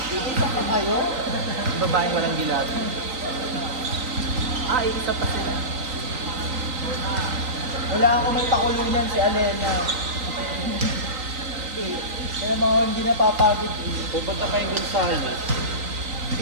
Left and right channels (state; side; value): late; left; 3.9 ms